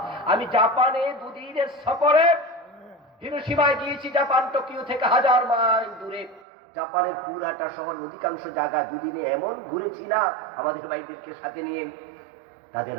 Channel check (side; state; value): left; drops out; at 6.4 s